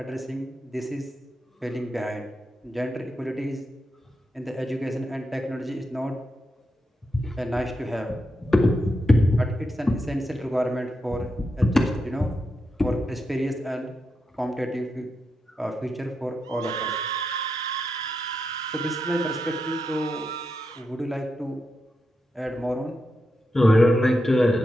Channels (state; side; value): normal; both; correlation 0.86